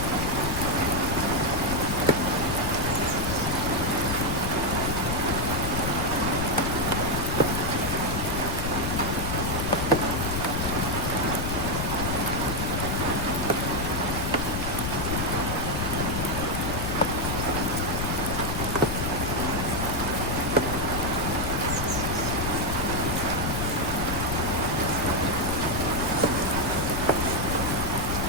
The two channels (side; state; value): left; noise; rumble, 2 dB below the sound